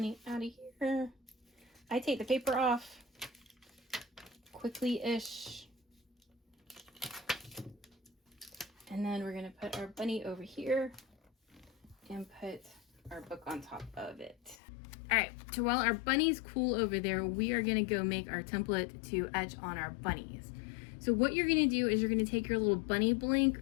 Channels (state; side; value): drops out; right; at 14.6 s